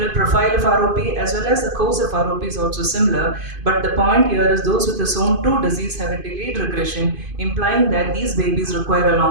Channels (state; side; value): late; left; 2.5 ms